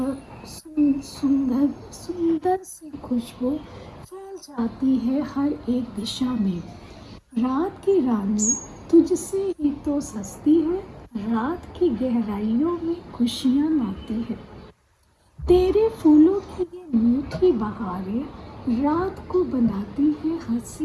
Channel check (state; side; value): identical; both; correlation 1.00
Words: सुंदर सी खुशबू फैल जाती है हर एक दिशा में। रात की रानी तुझसे ही तो सस्ती है, रात की गहराइयों में खुशियाँ लाती है। तेरे फूलों की ये मीठी बहारें रात को बनाती है